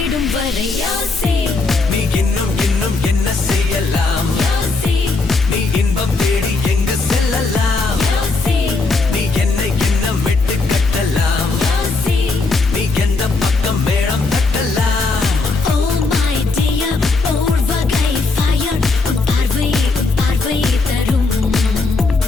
வரை யோசி நீ இன்னும் இன்னும் என்ன செய்யலாம் யோசி நீ இன்பம் தேடி எங்கு செல்லலாம் யோசி நீ என்னை இன்னும் விட்டு கட்டலாம் யோசி நீ எந்த பக்கம் மேளம் தட்டலாம் Oh my dear ஓர் வகை fire உன் பார்வை தரும்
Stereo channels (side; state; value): right; quieter; 3.7 dB